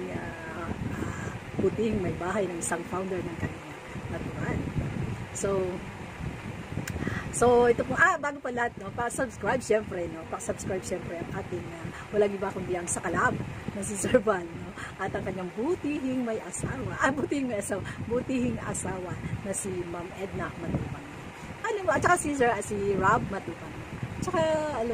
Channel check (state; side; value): identical; both; correlation 1.00